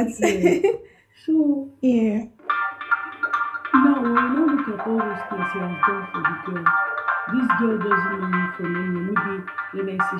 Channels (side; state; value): both; identical; correlation 1.00